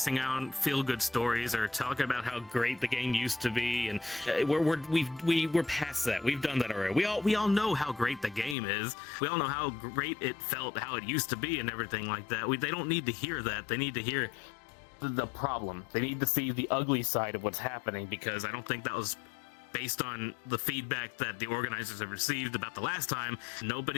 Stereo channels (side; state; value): right; drops out; at 8.6 s